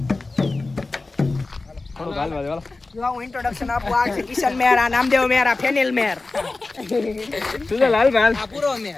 હું ઇન્ટ્રોડક્શન આપું. આ છે કિશન મેર, આ નામદેવ મેર, આ ફેનિલ મેર. લાલ ભાઈ આ પૂરો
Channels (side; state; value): right; quieter; 3.4 dB